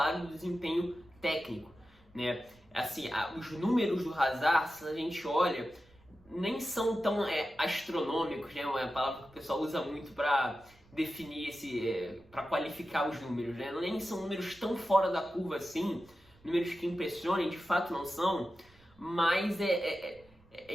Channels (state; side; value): noise; right; rumble, 28 dB below the sound